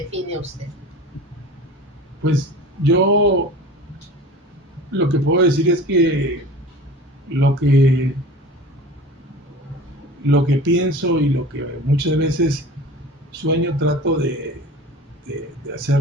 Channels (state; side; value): normal; both; correlation 0.38